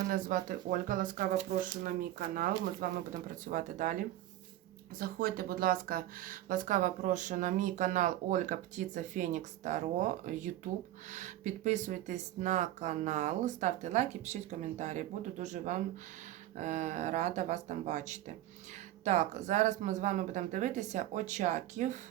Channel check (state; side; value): quieter; left; 14.2 dB